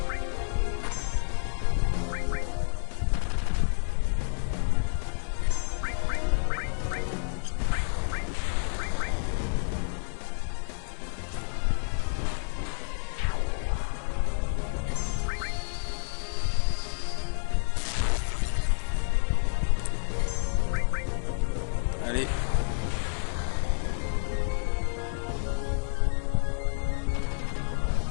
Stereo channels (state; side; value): silent; right; digital silence